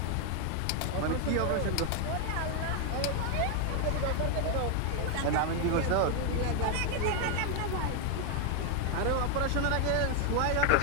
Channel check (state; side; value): different; both; correlation 0.00